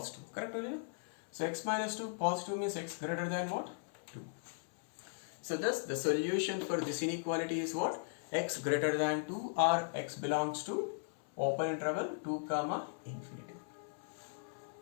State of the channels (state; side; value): silent; right; 53 dB below the other